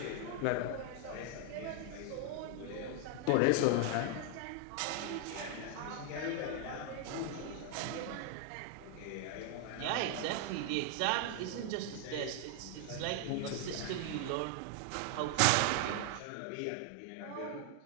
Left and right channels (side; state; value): both; different; correlation 0.00